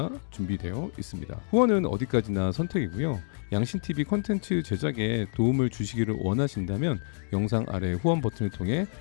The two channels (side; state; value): right; silent; digital silence